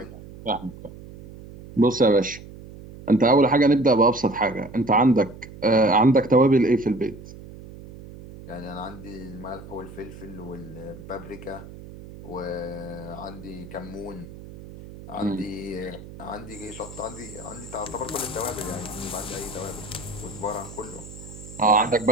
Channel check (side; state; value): right; noise; hum, 15 dB below the sound